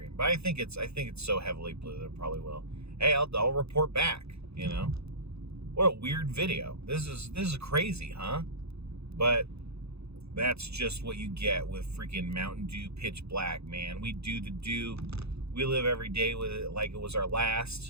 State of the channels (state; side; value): late; left; 0.79 ms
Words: But I think it's so heavily blue that it probably will. Hey, I'll report back. What a weird video. This is crazy, huh? But that's just what you get with freaking Mountain Dew Pitch Black, man. We do the dew. We live every day with it like it was our